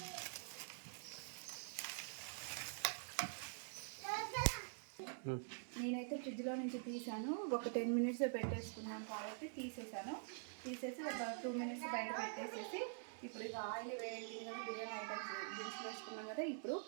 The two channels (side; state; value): left; silent; digital silence